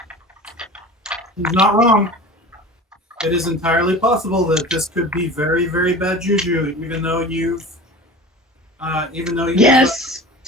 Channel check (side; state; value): both; normal; correlation 0.36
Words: He's not wrong. It is entirely possible that this could be very, very bad juju, even though you've Yes!